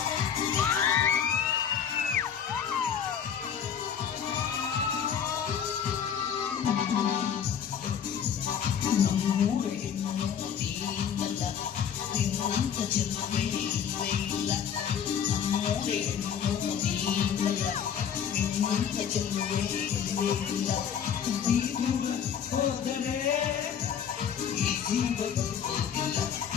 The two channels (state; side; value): quieter; right; 8.1 dB